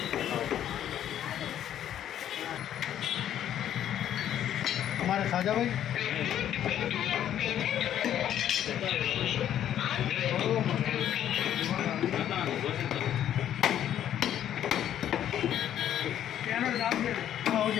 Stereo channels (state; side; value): quieter; right; 10.8 dB